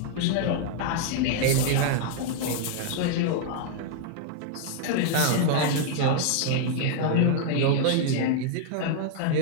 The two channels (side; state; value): both; different; correlation -0.01